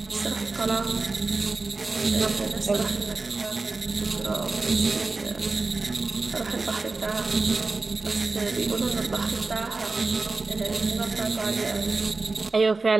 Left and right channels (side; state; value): left; quieter; 3.7 dB